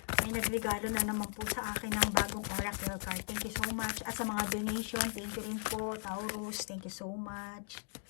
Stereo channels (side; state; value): right; silent; 53 dB below the other